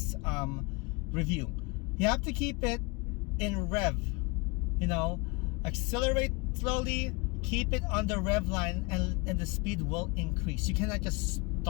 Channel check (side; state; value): right; quieter; 27.6 dB